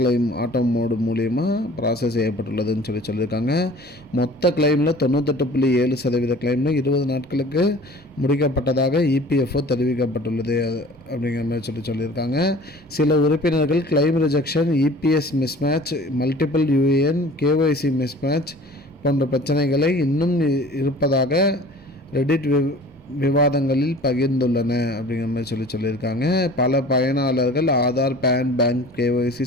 ஆட்டோ மோடு மூலியமாக ப்ராசஸ் செய்யப்பட்டுள்ளதுன்னு சொல்லியிருக்காங்க. மொத்த கிளைமில் 98.7% கிளைமில் 20 நாட்களுக்கு முடிக்கப்பட்டதாக இபிஎஃப்ஓ தெரிவிக்கப்பட்டுள்ளது அப்படிங்கிற மாதிரி சொல்லியிருக்காங்க. சில உறுப்பினர்கள் claim rejection, EPS mismatch, multiple UAN, KYC mismatch போன்ற பிரச்சனைகளை இன்னும் இருப்பதாக ரெடிட் விவாதங்களில் பகிர்ந்துள்ளன அப்படிங்கிற மாதிரி சொல்லியிருக்காங்க. பல பயனாளர்கள் ஆதார், பேன், பேங்க், கேஒய்சி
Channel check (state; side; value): normal; both; correlation 0.46